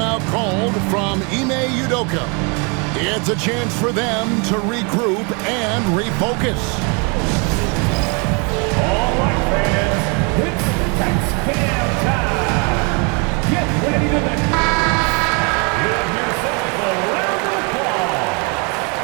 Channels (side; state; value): left; quieter; 33.3 dB